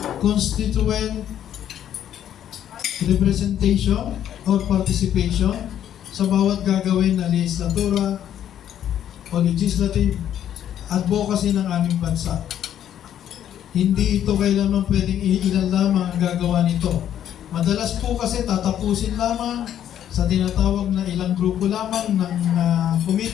constituent representation or participation sa bawat gagawin na legislatura o legislative advocacy ng aming bansa. Hindi ito kailanman pwedeng ilan lamang ang gagawa nito. Madalas po kasi tatapusin lamang sa tinatawag na ilang grupo lamang ng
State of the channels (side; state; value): right; quieter; 10.5 dB